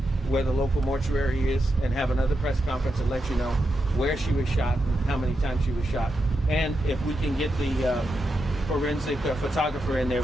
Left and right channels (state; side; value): normal; both; correlation 0.86